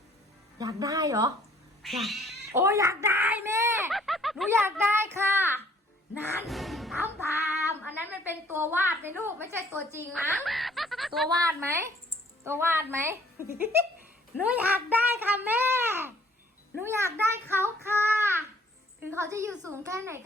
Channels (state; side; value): normal; both; correlation 0.59